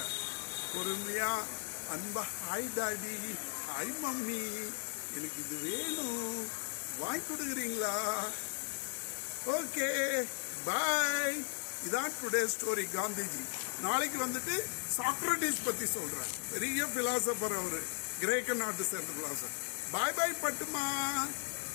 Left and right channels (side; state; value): right; silent; digital silence